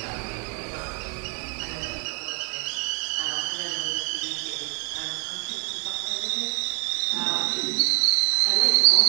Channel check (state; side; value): quieter; left; 32.4 dB